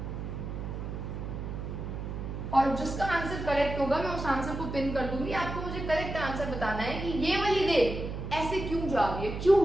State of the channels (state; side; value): noise; right; hum, 6 dB below the sound